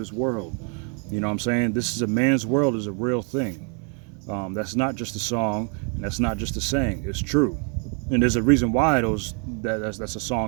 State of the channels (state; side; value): quieter; left; 39.1 dB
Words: world. You know what I'm saying? This is a man's world is a real thing. That's not just a song, and that's not just a saying. It's true, and there's a reason why that's a